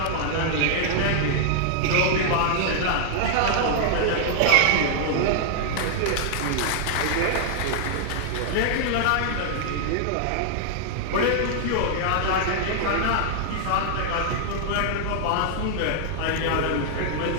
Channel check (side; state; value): both; different; correlation 0.00